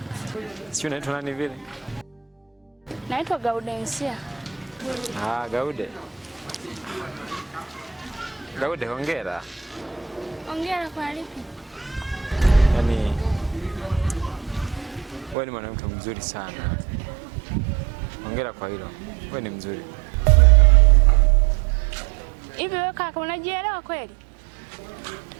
Sio unaitwa nani vile? Naitwa Gaudensia. Gaude. Gaude, hongera. Hongera kwa lipi? Yaani wewe ni mwanamke mzuri sana. Hongera kwa hilo. Wewe ni mzuri. Hivi wewe kaka unajielewa kweli?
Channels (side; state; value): left; drops out; at 15.4 s